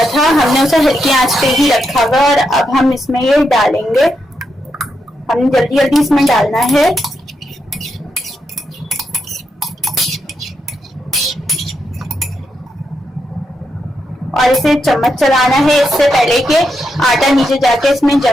था हमने उसे हल्की आंच पे ही रखा हुआ और अब हम इसमें ये डालेंगे। हमने जल्दी जल्दी इसमें डालना है। और इसे चम्मच चलाना है इससे पहले कि आटा नीचे जाके इसमें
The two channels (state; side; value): normal; both; correlation 0.83